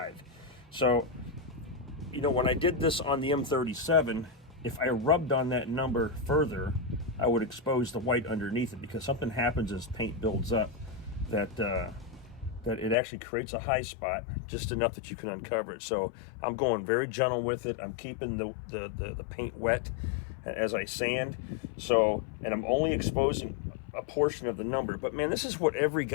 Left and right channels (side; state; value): right; drops out; at 13.0 s